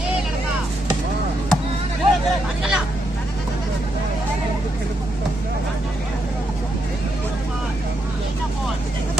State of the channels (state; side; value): normal; both; correlation 0.80